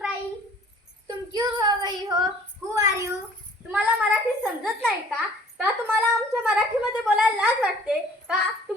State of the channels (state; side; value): normal; both; correlation 0.53